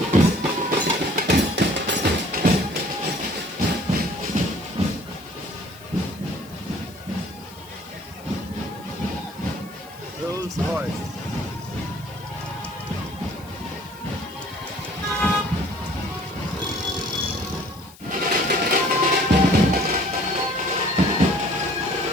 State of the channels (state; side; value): noise; left; hiss, 22 dB below the sound